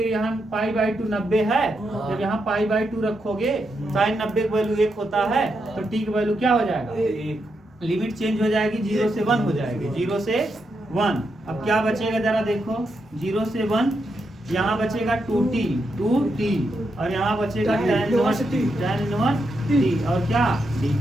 यहाँ π/2 90 है। जब यहाँ π/2 रखोगे साइन 90 की वैल्यू 1 होता है तो t की वैल्यू क्या हो जाएगा, लिमिट चेंज हो जाएगी 0 से 1 हो जाएगी, 0 से 1। अब क्या बचेगा जरा देखो, 0 से 1 यहाँ बचेगा 2t और यहाँ बचेगा tan इनवर्स t और क्या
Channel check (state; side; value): normal; both; correlation 0.83